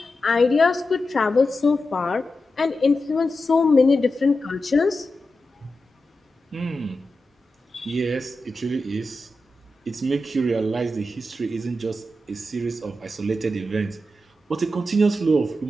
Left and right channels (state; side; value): normal; both; correlation 0.90